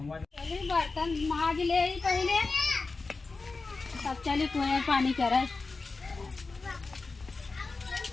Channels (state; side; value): quieter; right; 3.9 dB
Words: माज ले पहले तब चली कुएं पानी करे